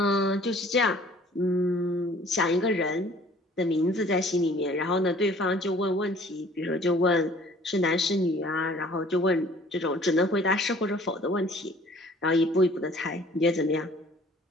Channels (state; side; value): normal; both; correlation 0.53